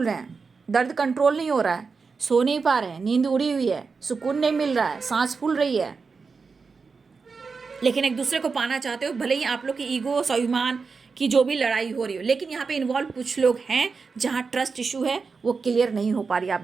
रहे हैं, दर्द कंट्रोल नहीं हो रहा है, सो नहीं पा रहे हैं, नींद उड़ी हुई है, सुकून नहीं मिल रहा है, सांस फूल रही है। लेकिन एक दूसरे को पाना चाहते हो, भले ही आप लोग की ईगो, स्वाभिमान की जो भी लड़ाई हो रही हो, लेकिन यहाँ पे इन्वॉल्व कुछ लोग हैं जहाँ ट्रस्ट इशू है, वो क्लियर नहीं हो पा रही आप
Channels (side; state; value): left; quieter; 4.9 dB